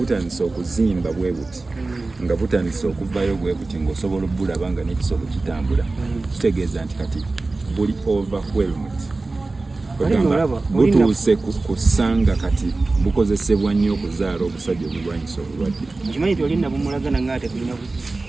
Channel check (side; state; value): left; quieter; 3.4 dB